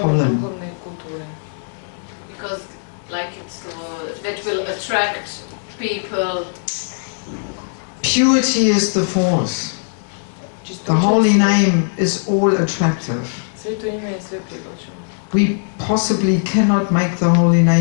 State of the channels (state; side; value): silent; right; 66 dB below the other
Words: Because, like, it's that will attract people. Purity is the force. The holy name is all attractive. We possibly cannot make the holy